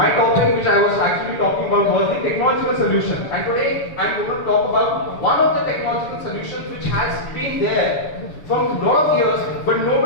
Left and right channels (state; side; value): late; right; 6.9 ms